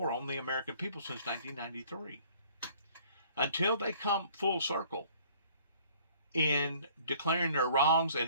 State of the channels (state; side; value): inverted; both; correlation -0.56